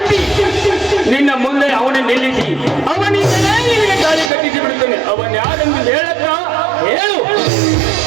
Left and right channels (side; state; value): left; drops out; at 4.3 s